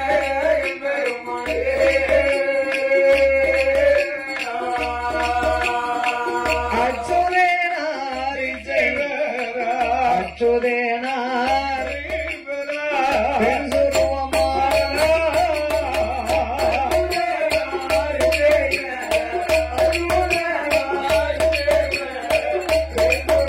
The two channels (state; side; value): identical; both; correlation 1.00